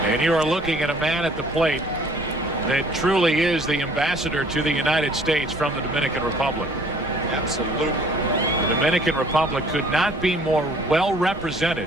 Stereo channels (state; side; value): normal; both; correlation 0.56